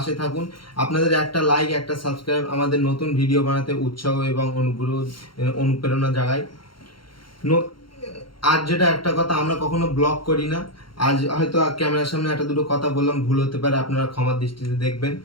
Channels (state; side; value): late; right; 0.73 ms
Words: থাকুন। আপনাদের একটা লাইক, একটা সাবস্ক্রাইব আমাদের নতুন ভিডিও বানাতে উৎসাহ এবং অনুপ্রেরণা জাগায়। আজ যেটা একটা কথা, আমরা কখনো ব্লগ করি না। আজ হয়তো ক্যামেরার সামনে একটা দুটো কথা বললাম, ভুল হতে পারে, আপনারা ক্ষমার দৃষ্টিতে দেখবেন।